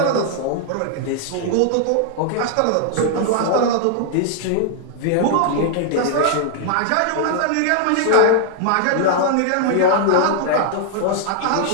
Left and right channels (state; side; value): different; both; correlation -0.01